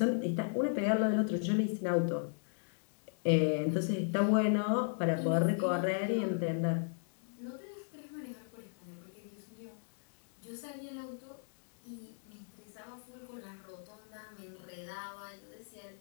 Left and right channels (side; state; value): right; silent; digital silence